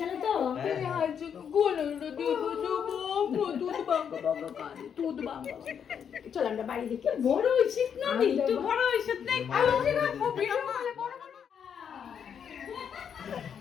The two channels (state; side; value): quieter; right; 7.8 dB